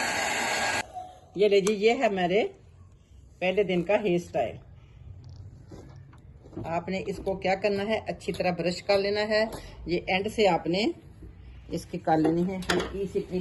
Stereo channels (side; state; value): both; identical; correlation 1.00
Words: ये लीजिए, ये है मेरे पहले दिन का हेयर स्टाइल। आपने इसको क्या करना है, अच्छी तरह ब्रश कर लेना है। ये एंड से आपने इसकी कर लेनी है हल्की सी